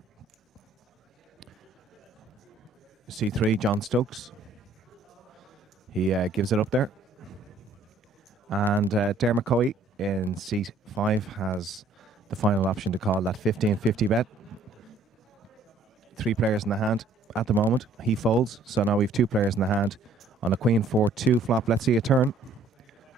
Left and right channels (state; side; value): quieter; left; 3.0 dB